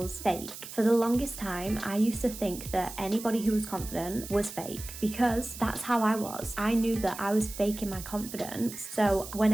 fake. For the longest time, I used to think that anybody who was confident was fake, because that's how I was. I knew that I was faking my confidence. So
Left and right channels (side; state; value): right; noise; hiss, 12 dB below the sound